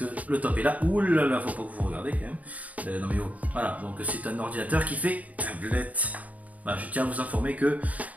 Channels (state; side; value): late; left; 0.072 ms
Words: le top est là. Ouh là là, faut pas que vous regardez quand même. Non mais oh, voilà, donc c'est un ordinateur qui fait tablette. Voilà, je tiens à vous informer que